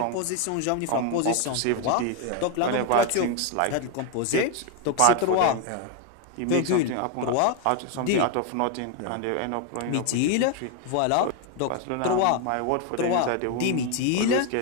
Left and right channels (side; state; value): both; different; correlation 0.01